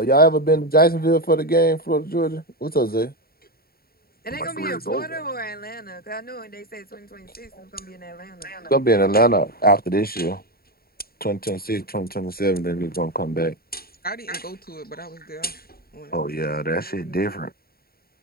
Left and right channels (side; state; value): right; late; 0.44 ms